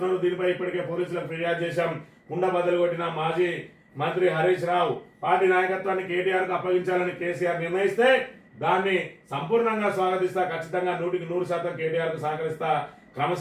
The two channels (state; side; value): identical; both; correlation 1.00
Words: దీనిపై ఇప్పటికే పోలీసులకు ఫిర్యాదు చేశాం, కుండ బద్దలు కొట్టిన మాజీ మంత్రి హరీష్ రావు పార్టీ నాయకత్వాన్ని కేటీఆర్ కు అప్పగించాలని కేసీఆర్ నిర్ణయిస్తే దాన్ని సంపూర్ణంగా స్వాగతిస్తా, ఖచ్చితంగా 100% కేటీఆర్ కు సహకరిస్తా,